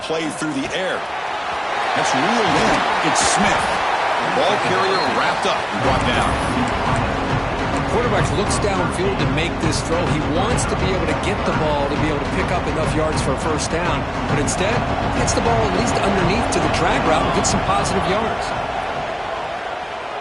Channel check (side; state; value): both; identical; correlation 1.00